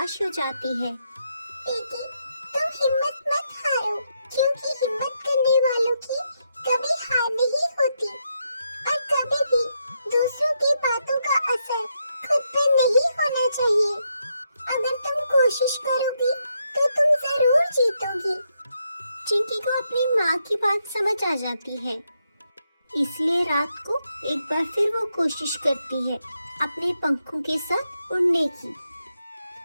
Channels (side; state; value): both; inverted; correlation -0.81